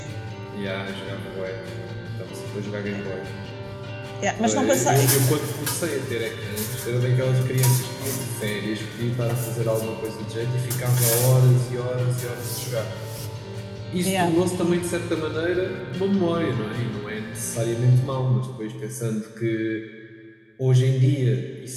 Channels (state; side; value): identical; both; correlation 1.00